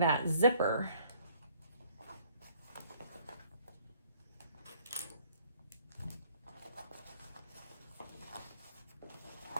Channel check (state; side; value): inverted; both; correlation -0.61